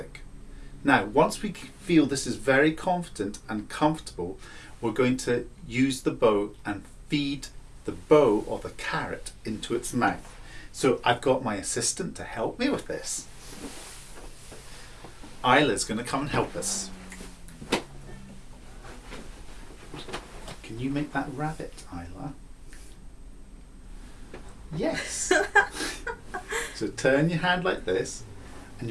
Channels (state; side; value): identical; both; correlation 1.00